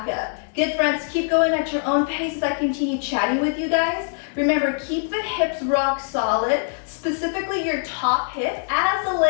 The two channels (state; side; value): silent; right; 58 dB below the other